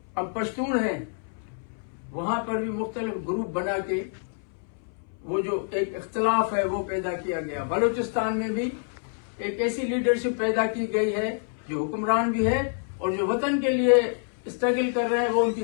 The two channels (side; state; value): right; silent; 60 dB below the other